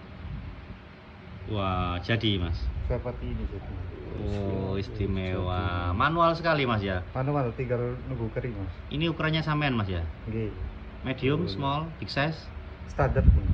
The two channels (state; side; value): identical; both; correlation 1.00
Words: Wah, jadi Mas. Seperti ini jadi. Oh, istimewa. Manual sekali Mas ya. Manual tinggal nunggu kering Mas. Ini ukurannya sampean Mas ya. Nggih. Medium, small, big size, Standar pun.